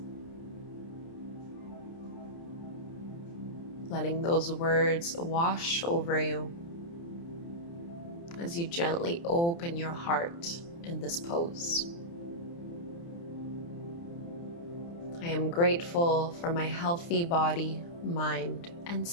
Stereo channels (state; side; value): late; right; 29 ms